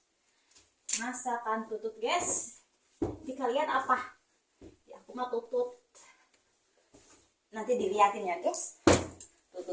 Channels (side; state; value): both; identical; correlation 1.00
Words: tutut guys. Di kalian apa? Ya aku mah tutut. Nanti dilihatin ya guys.